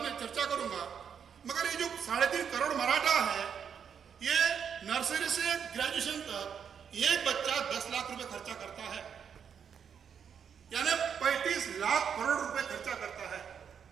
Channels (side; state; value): left; quieter; 7.4 dB